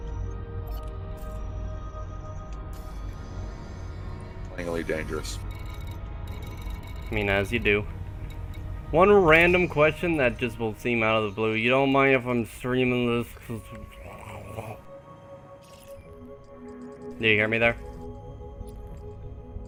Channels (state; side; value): identical; both; correlation 1.00